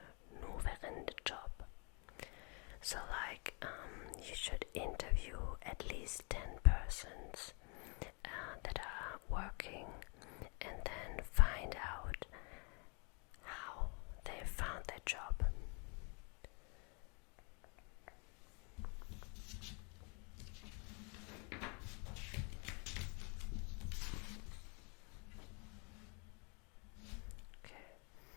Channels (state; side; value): quieter; right; 34.1 dB